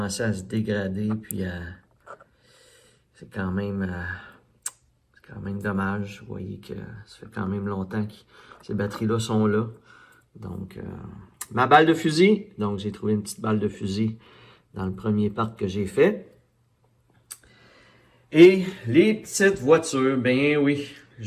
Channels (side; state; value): both; identical; correlation 1.00